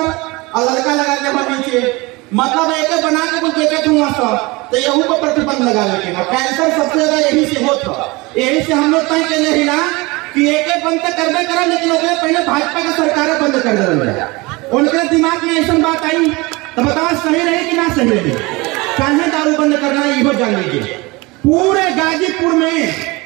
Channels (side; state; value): left; quieter; 23.9 dB